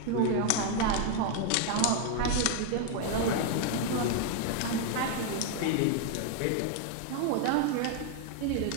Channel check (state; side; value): different; both; correlation 0.01